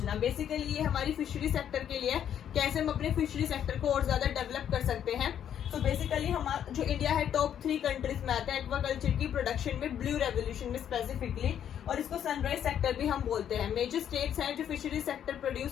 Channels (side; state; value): right; quieter; 9.5 dB